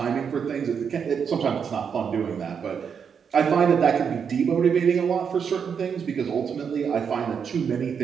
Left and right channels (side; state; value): left; quieter; 6.9 dB